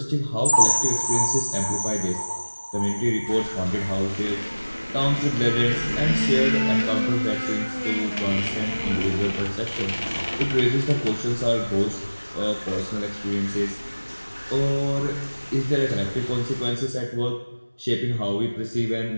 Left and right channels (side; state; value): both; inverted; correlation -1.00